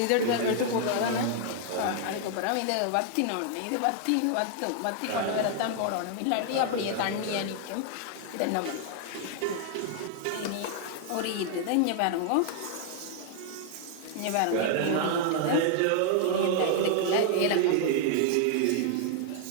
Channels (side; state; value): both; different; correlation 0.00